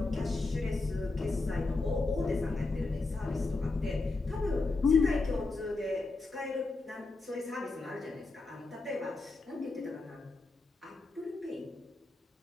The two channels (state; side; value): quieter; right; 3.4 dB